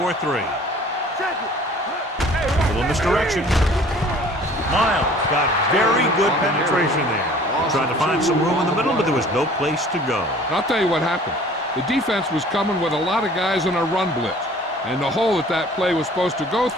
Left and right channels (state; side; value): normal; both; correlation 0.50